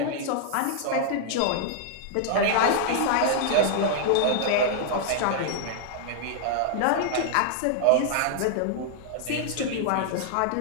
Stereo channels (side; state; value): both; different; correlation -0.01